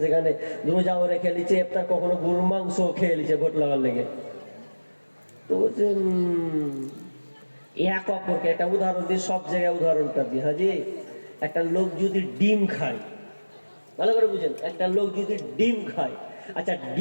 সেখানে রোজাও রেখে লিছে, ইফতার কখনো গরুর মাংস খেয়ে লিছে ভোট লাগার লেগে। তো এক অপরকে একটা উদাহরণ দিই, সব জায়গায় উদাহরণটা দিই। হাজি, একটা লোক যদি ডিম খায়, ভালো করে বুঝেন, একটা লোক যদি ডিম খায়, আচ্ছা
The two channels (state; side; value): inverted; both; correlation -1.00